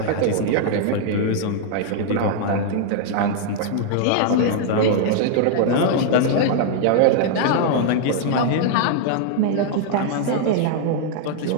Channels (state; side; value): different; both; correlation -0.01